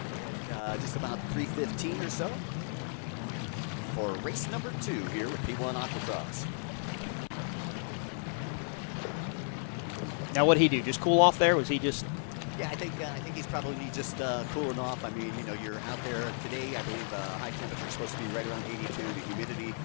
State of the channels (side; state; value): right; silent; 55 dB below the other